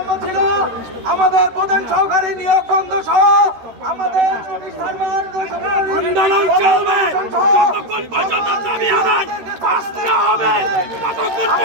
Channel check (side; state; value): left; late; 13 ms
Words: ছিল আমাদের প্রধান সহকারী নিয়োগ বন্ধ সহ আমাদের